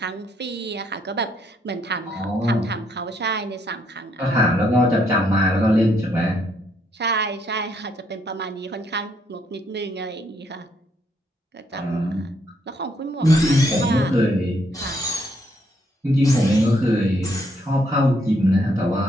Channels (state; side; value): normal; both; correlation 0.72